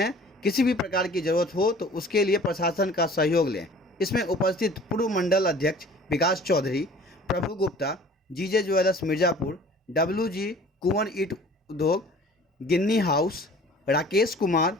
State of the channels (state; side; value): normal; both; correlation 0.48